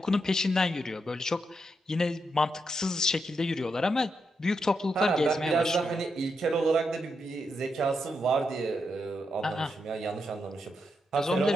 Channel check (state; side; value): normal; both; correlation 0.83